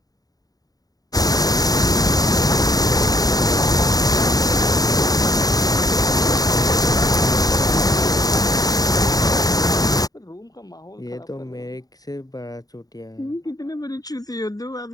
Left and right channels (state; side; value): late; right; 0.18 ms